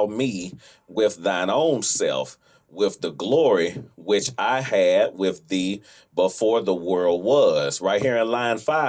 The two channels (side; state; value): both; identical; correlation 1.00